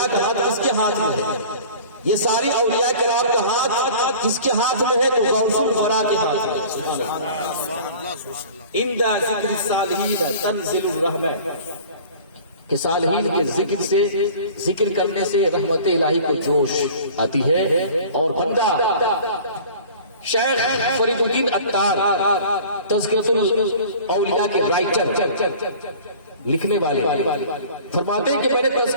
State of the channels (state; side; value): inverted; both; correlation -0.44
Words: کا ہاتھ کس کے ہاتھ میں ہے؟ یہ ساری اولیاء کرام کا ہاتھ کس کے ہاتھ میں ہے؟ تو غوث الورا کے ہاتھ میں. اندہ ذکر الصالحین تنزل الرحمہ، کہ صالحین کے ذکر سے، ذکر کرنے سے رحمت الہی کو جوش آتی ہے. اور بندہ شیخ فرید الدین عطار تذکرۃ الاولیاء کے رائٹر، لکھنے والے، فرماتے ہیں کہ میں نے